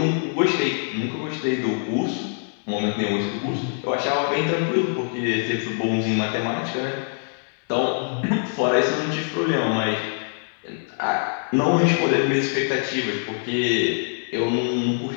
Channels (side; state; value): right; silent; 63 dB below the other